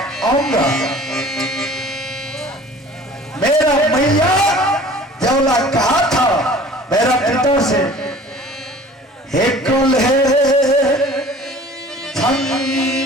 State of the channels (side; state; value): both; normal; correlation 0.47